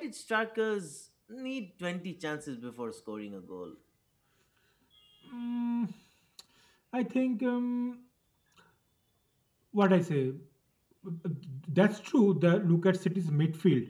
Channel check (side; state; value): both; identical; correlation 1.00